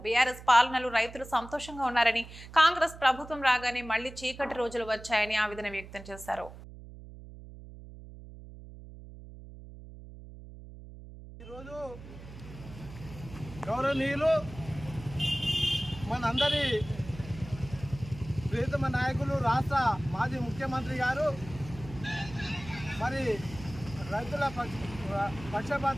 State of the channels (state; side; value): noise; right; hum, 15 dB below the sound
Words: బీఆర్ఎస్ పాలనలో రైతులు సంతోషంగా ఉన్నారని, కాంగ్రెస్ ప్రభుత్వం రాగానే మళ్లీ చీకటి రోజులు వచ్చాయని ఆవేదన వ్యక్తం చేశారు. ఈరోజు గౌరవనీయులు మనందరి ప్రియతమ నాయకులు రాష్ట్ర మాజీ ముఖ్యమంత్రి గారు మరి రైతుల